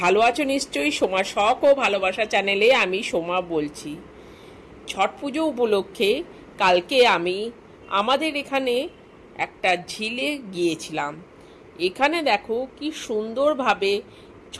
আছো নিশ্চয়ই। সোমা শখ ও ভালোবাসা চ্যানেলে আমি সোমা বলছি। ছট পুজো উপলক্ষে কালকে আমি আমাদের এখানে একটা ঝিলে গিয়েছিলাম। এখানে দেখো কি সুন্দরভাবে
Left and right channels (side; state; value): both; identical; correlation 1.00